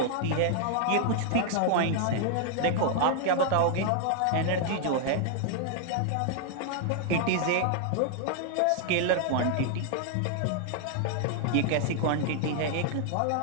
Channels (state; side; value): different; both; correlation 0.00